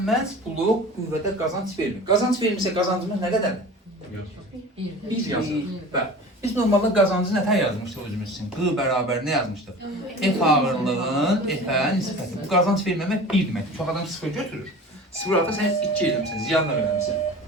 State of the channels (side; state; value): both; normal; correlation 0.38